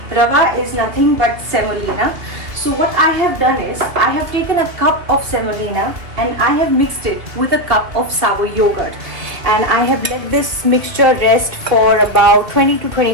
Rava is nothing but semolina. So what I have done is, I have taken a cup of semolina and I have mixed it with a cup of sour yogurt. And I have let this mixture rest for about 20 to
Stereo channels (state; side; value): late; left; 2.5 ms